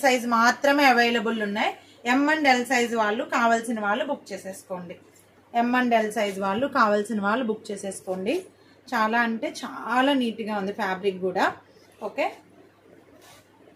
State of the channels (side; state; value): both; identical; correlation 1.00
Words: సైజ్ మాత్రమే అవైలబుల్ ఉన్నాయి. M and L సైజ్ వాళ్ళు కావాల్సిన వాళ్ళు బుక్ చేసేసుకోండి. చాలా అంటే చాలా నీట్గా ఉంది ఫ్యాబ్రిక్ కూడా. ఓకే,